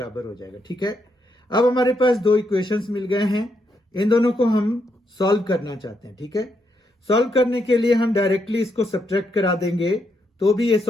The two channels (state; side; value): normal; both; correlation 0.79